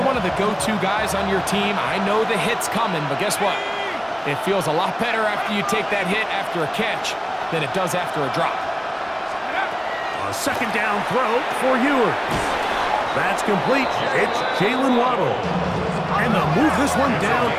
one of the go-to guys on your team, I know the hit's coming, but guess what? It feels a lot better after you take that hit after a catch than it does after a drop. A second down throw for Ewers. That's complete. It's Jalen Waddle. And they'll move this one down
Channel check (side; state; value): both; identical; correlation 1.00